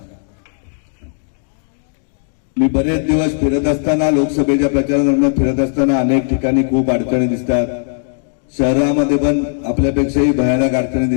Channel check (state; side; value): silent; right; digital silence